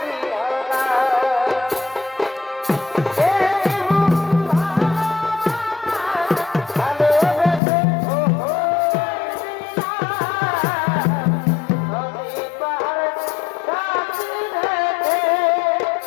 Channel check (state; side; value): drops out; right; at 7.6 s